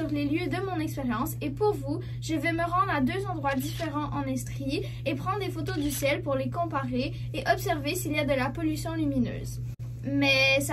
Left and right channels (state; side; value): identical; both; correlation 1.00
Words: les lieux de mon expérience et pour vous, je vais me rendre à deux endroits différents en Estrie et prendre des photos du ciel pour les comparer et observer s'il y a de la pollution lumineuse. Mais